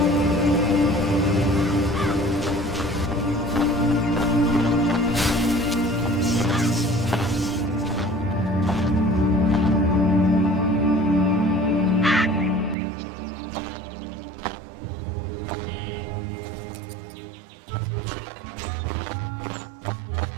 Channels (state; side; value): drops out; left; at 12.8 s